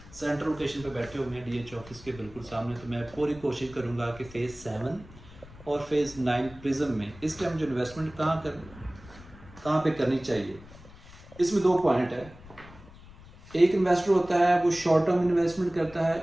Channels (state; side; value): noise; left; rumble, 20 dB below the sound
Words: सेंट्रल लोकेशन पे बैठे हुए हैं DH ऑफिस के बिल्कुल सामने, तो मैं पूरी कोशिश करूँगा कि फ़ेज़ 7 और फ़ेज़ 9 प्रिज्म में इस टाइम जो इन्वेस्टमेंट कहाँ पे करनी चाहिए। इसमें दो पॉइंट है। एक इन्वेस्टर होता है वो शॉर्ट टर्म इन्वेस्टमेंट करता है,